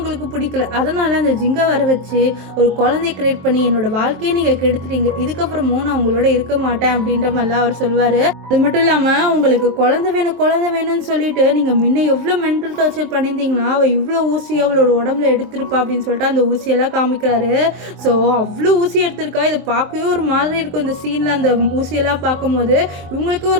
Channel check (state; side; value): late; left; 23 ms